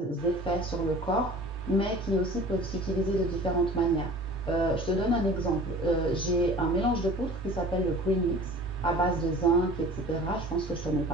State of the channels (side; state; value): both; normal; correlation 0.43